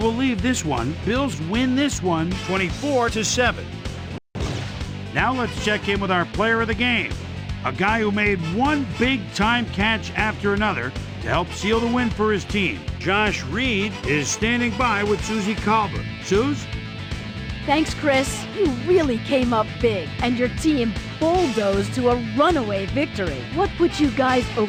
leave this one. Bills win this one 24-7. Now let's check in with our player of the game. A guy who made one big-time catch after another to help seal the win for his team. Josh Reed is standing by with Susie Colbert. Suze? Thanks, Chris. You really came up big, and your team bulldozed to a runaway victory. What put you guys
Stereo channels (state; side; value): identical; both; correlation 1.00